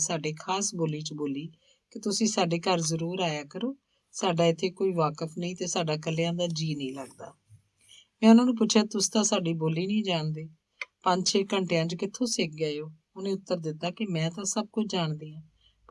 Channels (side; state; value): both; identical; correlation 1.00